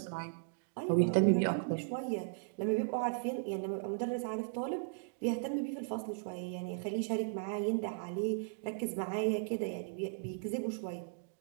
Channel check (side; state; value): left; silent; digital silence